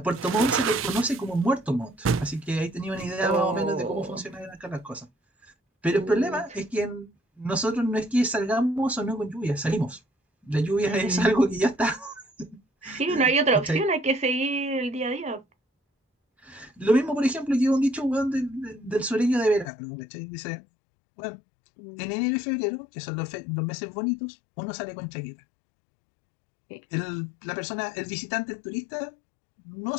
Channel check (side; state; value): right; drops out; at 19.7 s